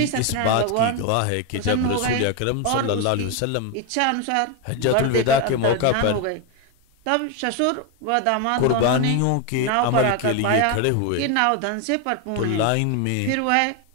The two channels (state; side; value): different; both; correlation 0.01